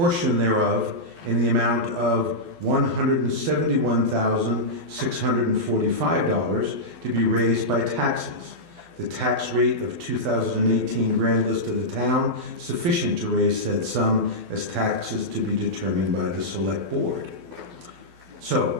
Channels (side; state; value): left; late; 12 ms